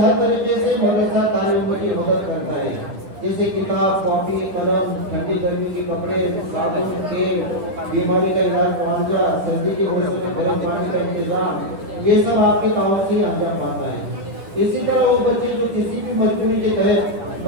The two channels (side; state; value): left; late; 10 ms